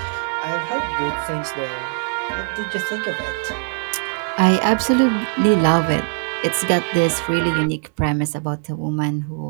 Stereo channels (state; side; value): silent; left; 65 dB below the other